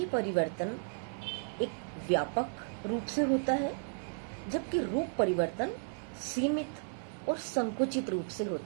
परिवर्तन एक व्यापक रूप से होता है, जबकि रूप परिवर्तन सीमित और संकुचित रूप से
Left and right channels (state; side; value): silent; left; digital silence